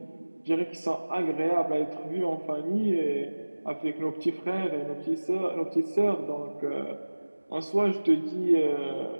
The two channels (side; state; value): both; inverted; correlation -1.00